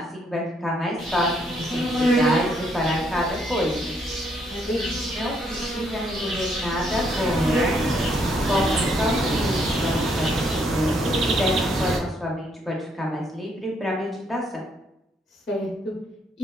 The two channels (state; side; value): normal; both; correlation 0.71